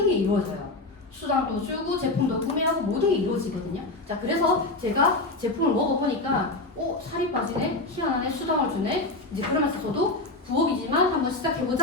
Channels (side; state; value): right; quieter; 3.0 dB